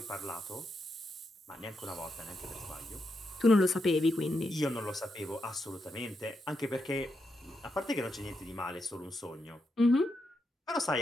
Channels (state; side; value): normal; both; correlation 0.84